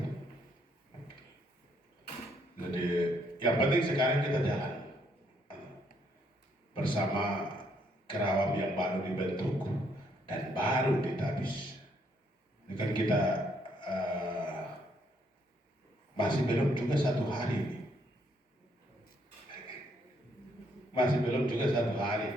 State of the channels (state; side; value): normal; both; correlation 0.71